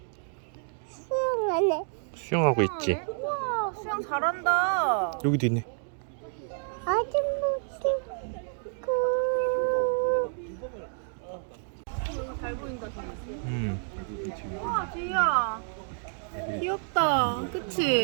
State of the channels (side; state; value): left; silent; 58 dB below the other